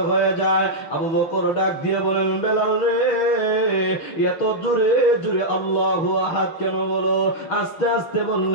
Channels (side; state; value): right; late; 6.3 ms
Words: হয়ে যায়। আবু বকর ডাক দিয়ে বলেন, বেলাল রে, এত জোরে জোরে আল্লাহু আহাদ কেন বলো? আস্তে আস্তে